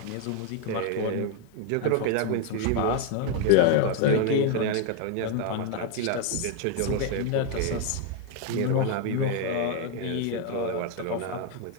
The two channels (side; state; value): both; different; correlation 0.01